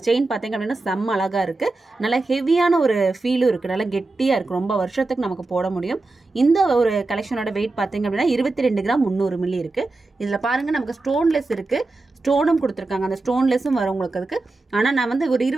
செயின் பார்த்தீங்க அப்படின்னா செம்ம அழகா இருக்கு. நல்ல ஹெவியான ஒரு ஃபீலும் இருக்கு. நல்லா கெட்டியா இருக்கு. ரொம்ப வருஷத்துக்கு நமக்கு போட முடியும். இந்த ஒரு கலெக்ஷனோட வெயிட் பார்த்தீங்க அப்படின்னா 22 கிராம் 300 மில்லி இருக்கு. இதுல பாருங்க நமக்கு ஸ்டோன்லெஸ் இருக்கு, ஸ்டோனும் கொடுத்துருக்காங்க. அந்த ஸ்டோன்லெஸும் வரும் உங்களுக்கு அதுக்கு. ஆனா நான் வந்து ஒரு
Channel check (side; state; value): left; quieter; 3.3 dB